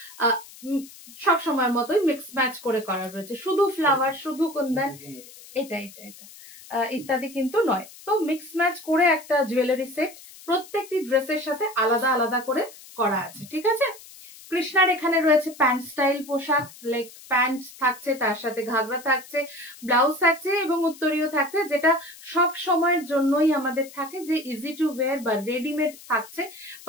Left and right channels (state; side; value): noise; left; hiss, 19 dB below the sound